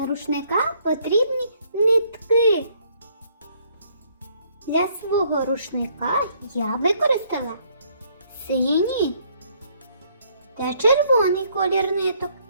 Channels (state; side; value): inverted; both; correlation -0.66